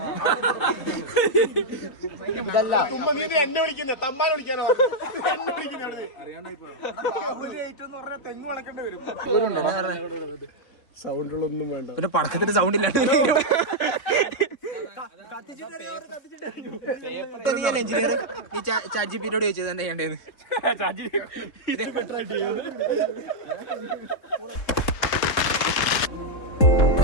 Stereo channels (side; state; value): right; late; 3.6 ms